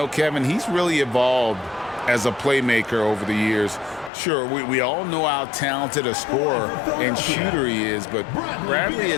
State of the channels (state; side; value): drops out; right; at 4.1 s